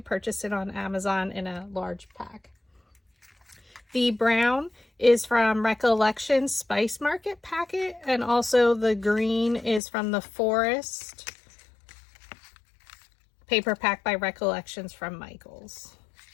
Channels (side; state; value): right; drops out; at 9.8 s